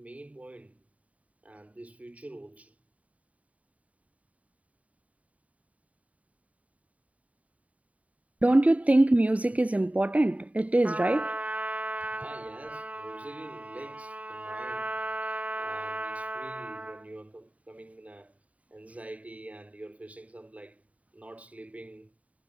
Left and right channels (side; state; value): left; late; 0.068 ms